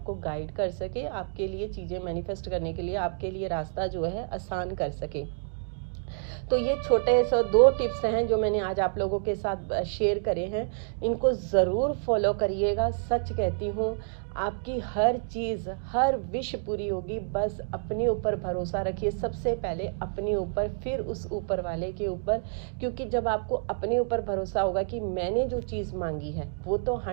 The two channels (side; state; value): left; silent; digital silence